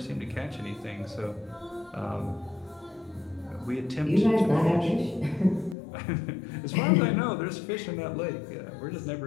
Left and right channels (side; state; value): right; drops out; at 5.8 s